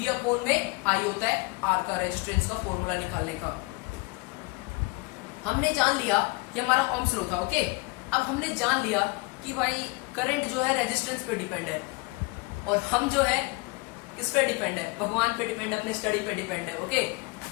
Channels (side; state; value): right; quieter; 26.0 dB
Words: अपॉन में I होता है R का रेजिस्टेंस का फॉर्मूला निकालने का. हमने जान लिया कि हमारा ओम्स लॉ था. ओके, अब हमने जान लिया कि भाई करंट जो है रेजिस्टेंस पे डिपेंड है, और हम जो है किस पे डिपेंड है? भगवान पे डिपेंड है, अपने स्टडी पे डिपेंड है. ओके,